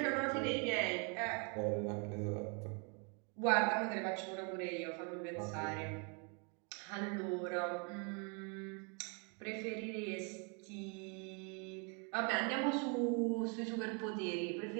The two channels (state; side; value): quieter; left; 35.6 dB